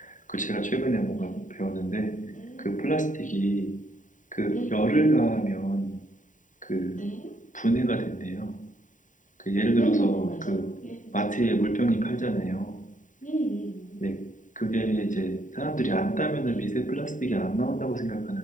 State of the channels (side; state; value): right; late; 0.37 ms